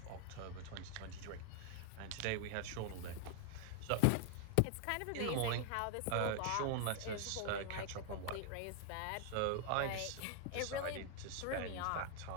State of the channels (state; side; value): different; both; correlation 0.00